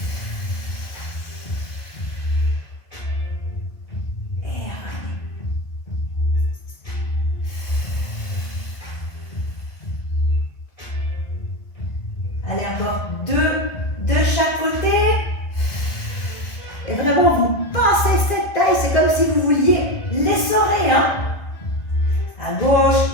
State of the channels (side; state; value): right; late; 2.0 ms